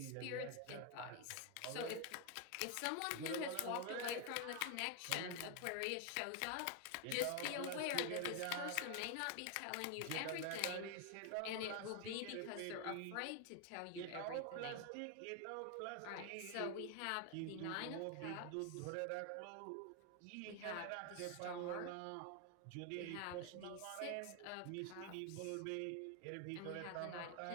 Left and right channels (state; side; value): different; both; correlation 0.01